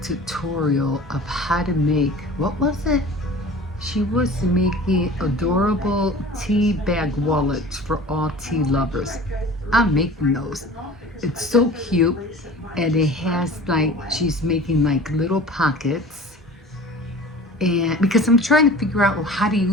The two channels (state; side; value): normal; both; correlation 0.41